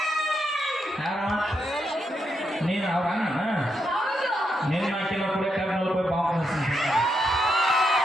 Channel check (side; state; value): both; normal; correlation 0.81